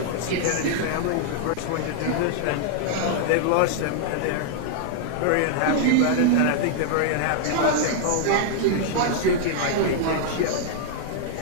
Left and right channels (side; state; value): both; different; correlation -0.01